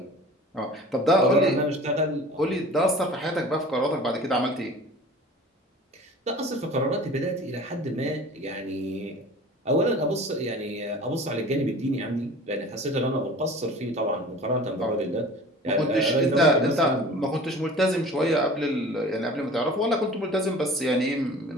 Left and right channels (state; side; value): normal; both; correlation 0.42